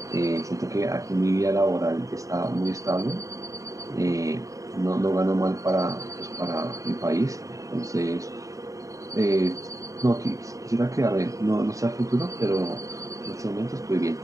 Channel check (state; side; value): late; left; 0.16 ms